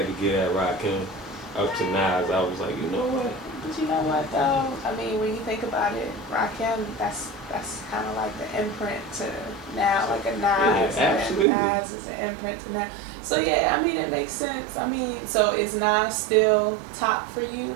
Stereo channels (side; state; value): left; drops out; at 11.5 s